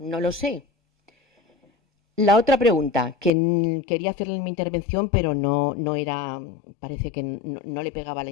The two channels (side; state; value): right; drops out; at 3.3 s